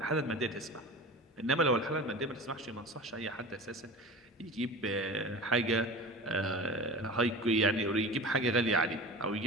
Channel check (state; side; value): normal; both; correlation 0.34